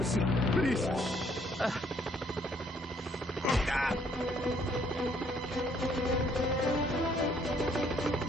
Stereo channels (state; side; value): normal; both; correlation 0.65